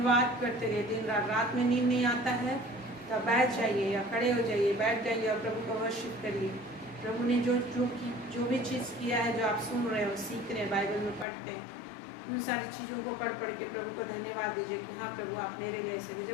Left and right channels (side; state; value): right; drops out; at 11.2 s